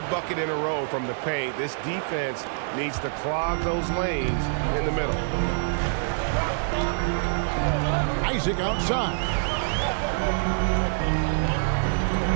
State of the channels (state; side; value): silent; left; 59 dB below the other